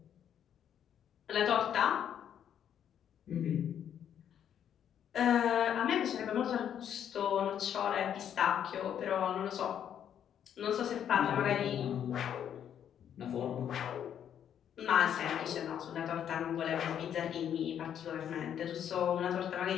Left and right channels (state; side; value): quieter; right; 9.3 dB